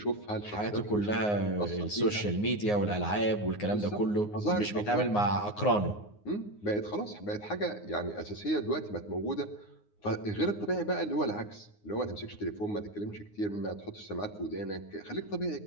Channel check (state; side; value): late; right; 9.6 ms